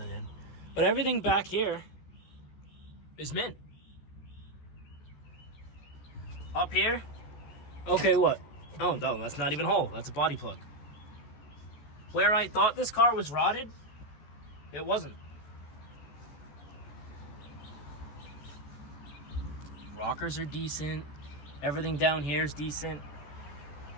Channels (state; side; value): late; right; 14 ms